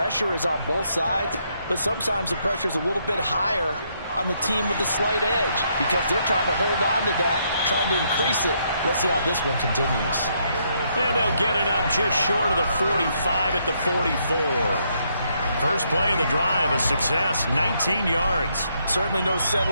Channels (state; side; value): inverted; both; correlation -0.74